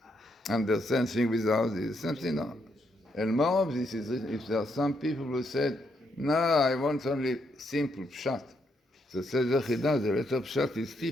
understand things without this? Something no. And more of this is if there are some people who said, no, I want only simple pshat. So says the Chida, the letter pshat is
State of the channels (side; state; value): both; normal; correlation 0.77